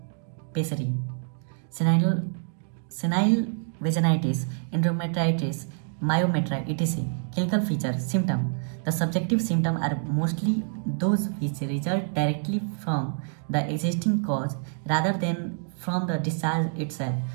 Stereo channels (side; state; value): left; silent; 60 dB below the other